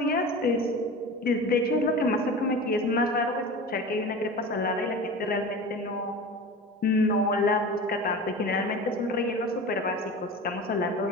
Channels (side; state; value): both; normal; correlation 0.33